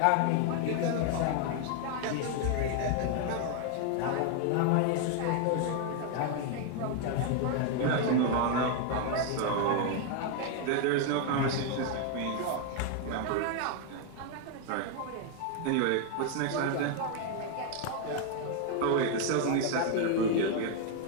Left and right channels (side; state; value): both; different; correlation 0.00